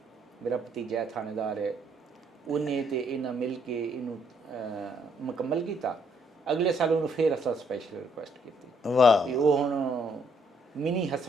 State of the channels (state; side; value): normal; both; correlation 0.69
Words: ਮੇਰਾ ਭਤੀਜਾ ਥਾਣੇਦਾਰ ਹੈ, ਉਹਨੇ ਤੇ ਇਹਨਾਂ ਮਿਲ ਕੇ ਇਹਨੂੰ ਮੁਕੰਮਲ ਕੀਤਾ। ਅਗਲੇ ਸਾਲ ਉਹਨੂੰ ਫਿਰ ਅਸਾਂ ਸਪੈਸ਼ਲ ਰਿਕੁਐਸਟ ਕੀਤੀ। ਵਾਹ। ਵੀ ਉਹ ਹੁਣ ਮਿਨੀ